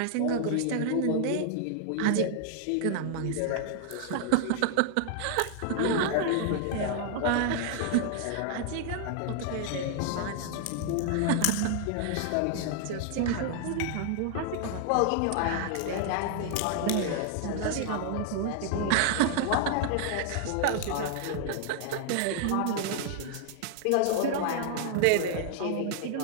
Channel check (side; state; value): both; different; correlation 0.00